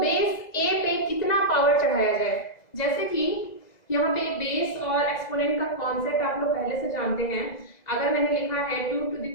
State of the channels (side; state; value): right; late; 2.0 ms